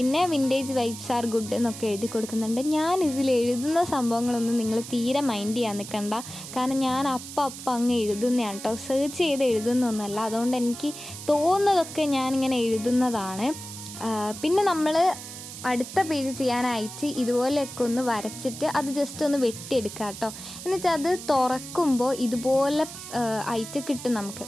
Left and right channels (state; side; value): noise; right; hiss, 12 dB below the sound